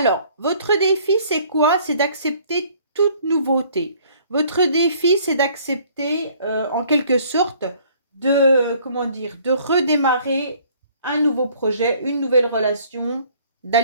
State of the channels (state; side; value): inverted; both; correlation -0.58